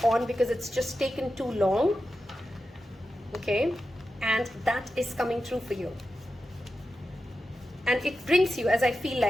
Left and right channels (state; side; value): normal; both; correlation 0.91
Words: on because it's just taken too long. Okay, and that is coming through for you. And it brings you, as I feel